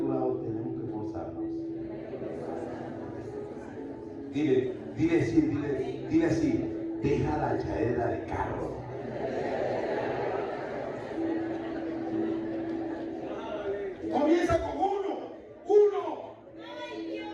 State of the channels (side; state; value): both; identical; correlation 1.00